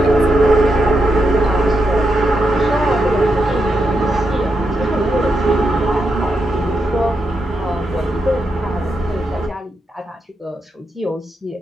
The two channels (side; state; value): both; normal; correlation 0.84